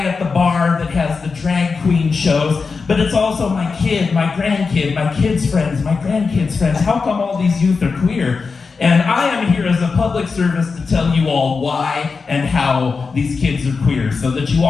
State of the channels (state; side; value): quieter; right; 4.8 dB